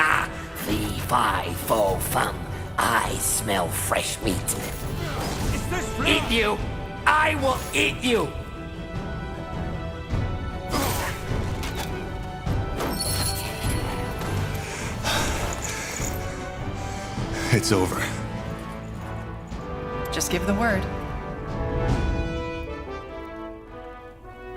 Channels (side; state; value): both; identical; correlation 1.00